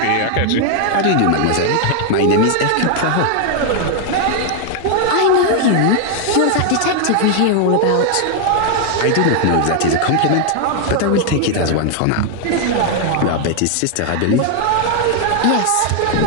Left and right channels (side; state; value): both; different; correlation 0.00